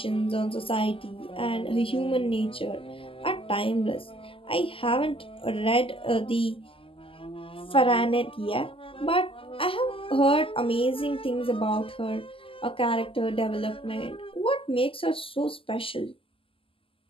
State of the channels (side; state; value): right; late; 0.26 ms